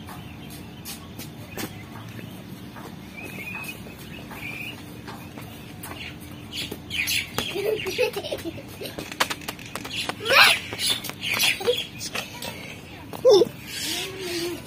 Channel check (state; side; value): identical; both; correlation 1.00